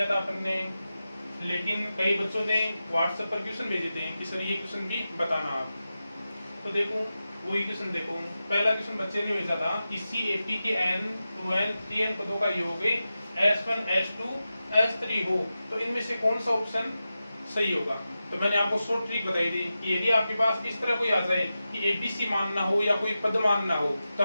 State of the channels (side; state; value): both; inverted; correlation -0.92